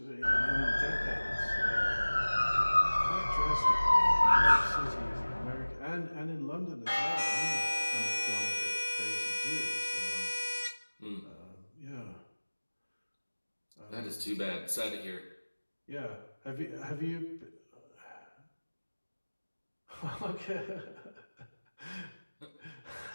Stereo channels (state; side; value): inverted; both; correlation -1.00